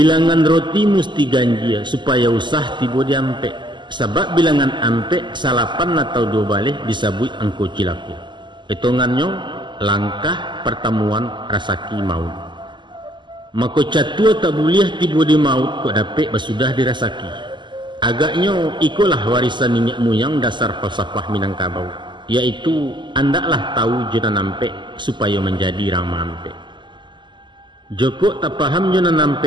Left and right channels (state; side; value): late; left; 0.22 ms